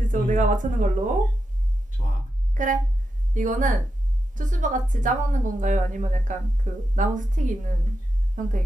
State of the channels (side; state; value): both; normal; correlation 0.87